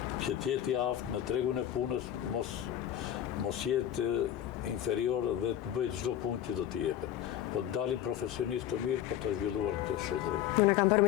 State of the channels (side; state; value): right; quieter; 11.1 dB